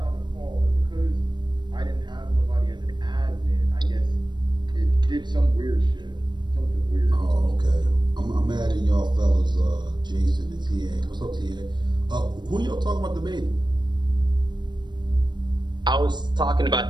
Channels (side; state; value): left; late; 0.22 ms